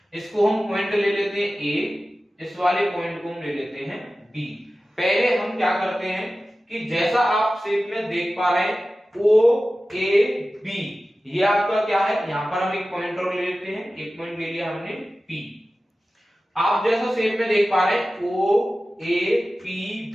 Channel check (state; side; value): normal; both; correlation 0.95